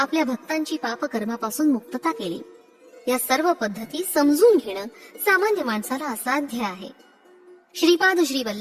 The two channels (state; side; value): identical; both; correlation 1.00